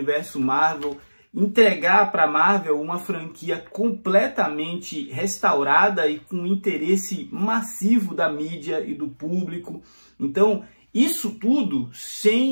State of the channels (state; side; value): inverted; both; correlation -1.00